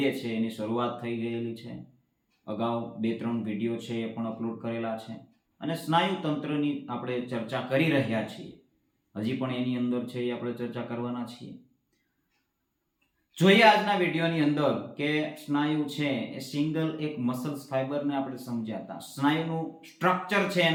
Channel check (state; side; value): identical; both; correlation 1.00